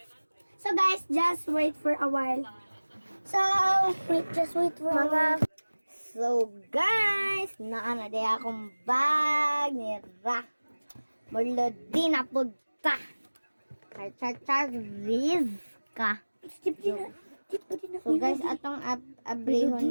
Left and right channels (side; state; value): both; inverted; correlation -1.00